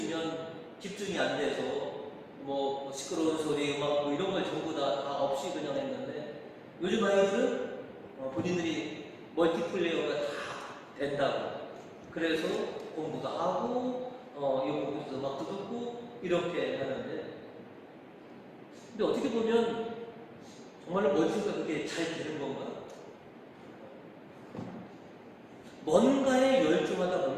집중이 안 돼서 시끄러운 소리, 음악 이런 걸 전부 다 없이 그냥 했는데 요즘 아이들은 본인들이 멀티플레이어가 다 된다고 그래서 공부도 하고 이거 음악도 듣고 이렇게 하는데 근데 어떻게 보면 정말로 멀티가 그렇게 잘 되는 건가? 뭔가에 열중하다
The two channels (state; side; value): identical; both; correlation 1.00